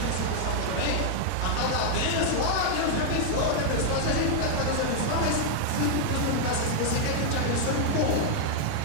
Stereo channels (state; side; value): different; both; correlation 0.00